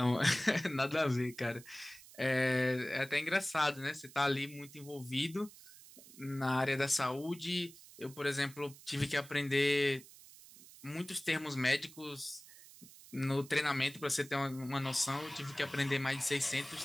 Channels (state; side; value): noise; right; hiss, 20 dB below the sound